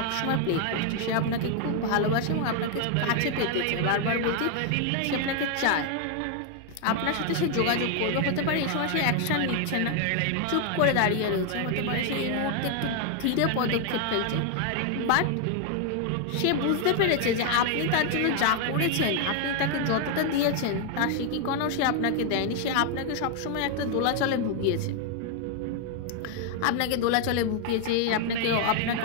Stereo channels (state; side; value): different; both; correlation 0.00